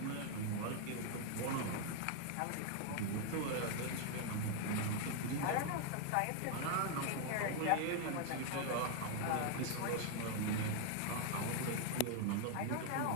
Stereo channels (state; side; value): different; both; correlation 0.01